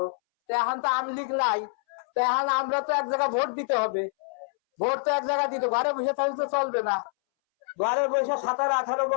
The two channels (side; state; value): right; silent; 60 dB below the other